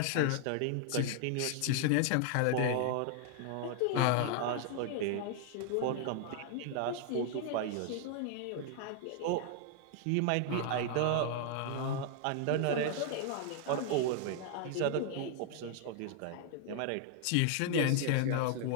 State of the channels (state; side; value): different; both; correlation 0.00